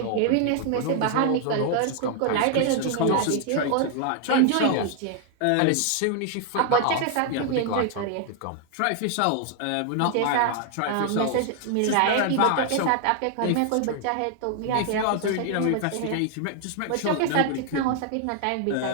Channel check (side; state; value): both; different; correlation 0.00